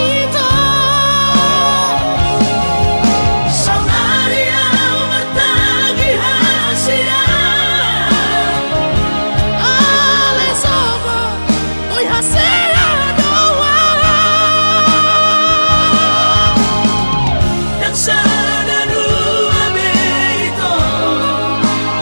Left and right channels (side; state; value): both; inverted; correlation -1.00